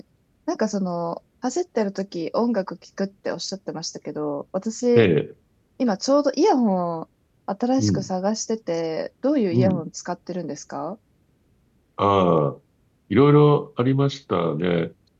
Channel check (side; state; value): both; identical; correlation 1.00